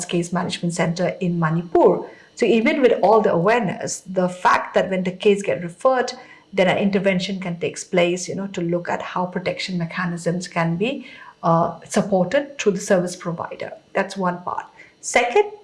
Case Management Center in Manipur. So even with all the awareness, the fact that when the case get referred, then an intervention can take place, to look at how protection mechanisms can be supported through the service provider. That's one part. Second,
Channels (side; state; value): both; identical; correlation 1.00